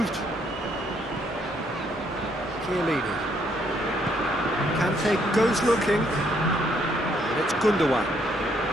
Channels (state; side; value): normal; both; correlation 0.70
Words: Chiellini. Kante goes looking. And it's Gundogan.